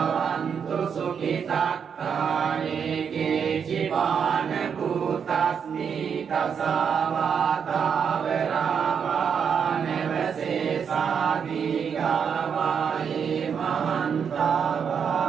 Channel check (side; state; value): left; quieter; 7.0 dB